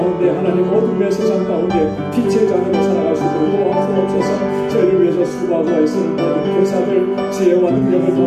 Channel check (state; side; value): identical; both; correlation 1.00